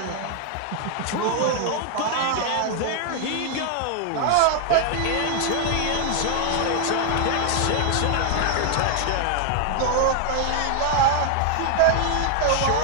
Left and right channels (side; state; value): both; different; correlation 0.00